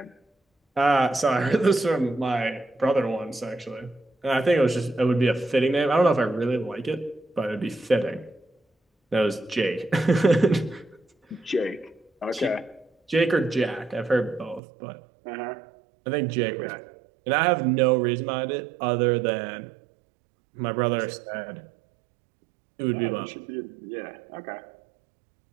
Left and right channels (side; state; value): left; drops out; at 14.6 s